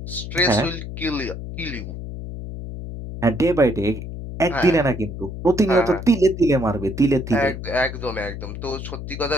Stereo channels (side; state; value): left; noise; hum, 8 dB below the sound